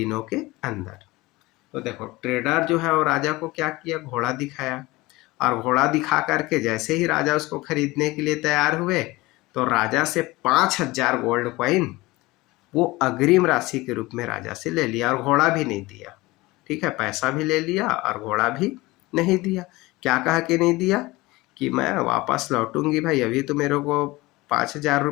के अंदर। तो देखो ट्रेडर जो है वो राजा को क्या किया? घोड़ा दिखाया, और घोड़ा दिखा करके जैसे ही राजा उसको खरीदने के लिए तैयार हुए तो राजा से 5,000 गोल्ड कॉइन वो अग्रिम राशि के रूप में राजा से ले लिया, और घोड़ा भी नहीं दिया। ठीक है, पैसा भी ले लिया और घोड़ा भी नहीं दिया। क्या कहा कि नहीं दिया? कि मैं वापस लौटूंगी भाई, अभी तो मेरे को 5,000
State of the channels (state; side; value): quieter; right; 20.9 dB